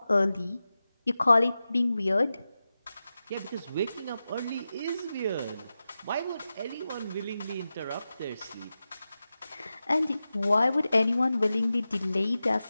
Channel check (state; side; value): inverted; both; correlation -0.93